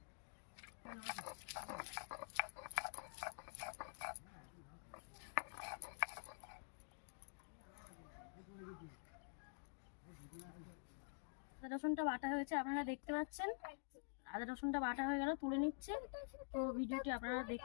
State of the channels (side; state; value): right; silent; digital silence